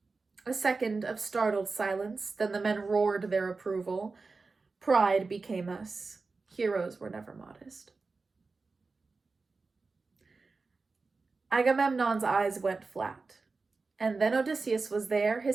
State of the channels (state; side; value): quieter; left; 4.1 dB